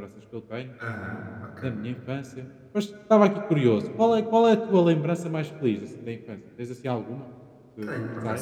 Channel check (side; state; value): both; identical; correlation 1.00